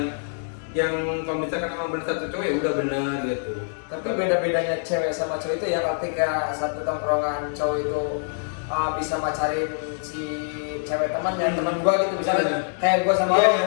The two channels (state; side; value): silent; right; 62 dB below the other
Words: Yang kalau misalkan emang benar satu cowok ya udah benar gitu. Tapi beda-bedanya cewek sama cowok itu ya, ketika satu tongkrongan cowok itu bisa pacarin si cewek temannya, teman gua gitu misalnya, kayak gua sama lo